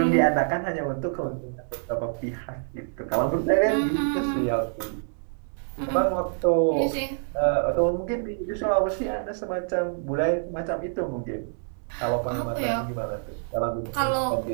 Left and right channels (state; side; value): silent; left; digital silence